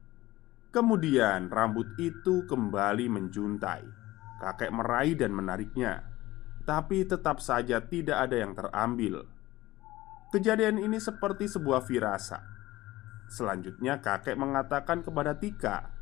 Kemudian rambut itu kembali menjuntai. Kakek meraih dan menariknya, tapi tetap saja tidak ada yang terambil. Kejadian ini seperti sebuah firasat. Selanjutnya kakek mengatakan kepada Tika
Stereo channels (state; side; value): quieter; right; 17.5 dB